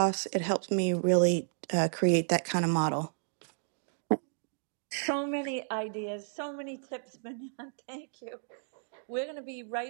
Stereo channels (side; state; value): left; silent; digital silence